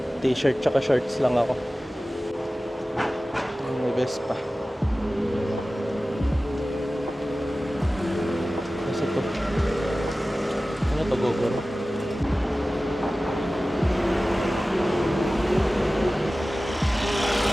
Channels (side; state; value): both; normal; correlation 0.96